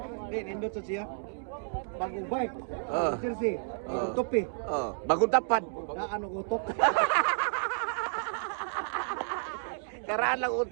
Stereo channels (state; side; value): silent; left; digital silence